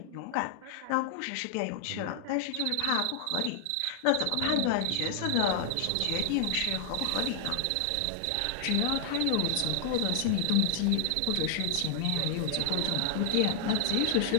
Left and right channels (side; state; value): both; different; correlation 0.00